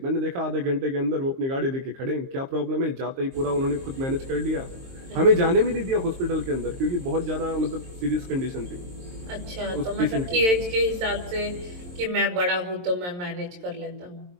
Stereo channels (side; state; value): left; late; 22 ms